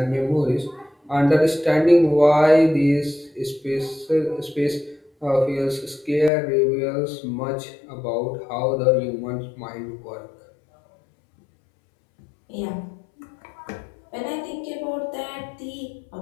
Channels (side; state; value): right; drops out; at 6.3 s